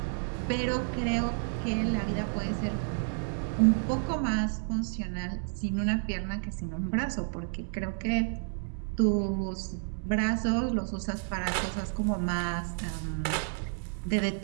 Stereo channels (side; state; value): left; silent; digital silence